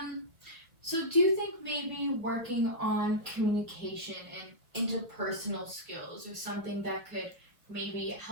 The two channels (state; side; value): late; left; 1.4 ms